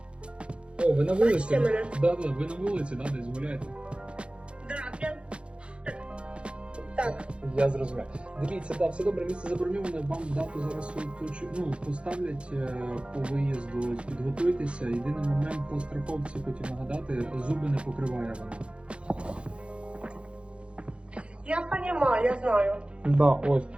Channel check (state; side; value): late; left; 0.058 ms